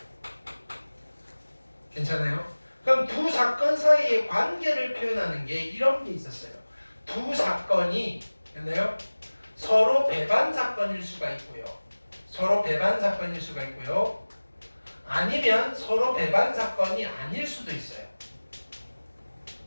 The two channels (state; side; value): inverted; both; correlation -1.00